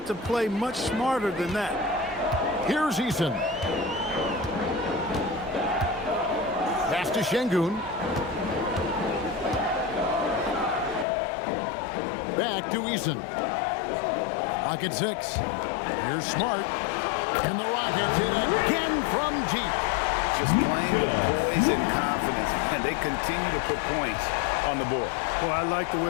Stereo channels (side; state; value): right; drops out; at 11.1 s